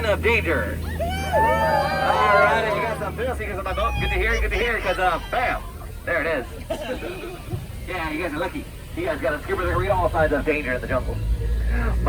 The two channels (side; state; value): both; identical; correlation 1.00